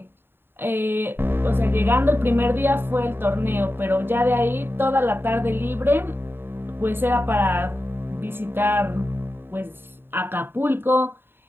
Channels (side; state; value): left; late; 0.11 ms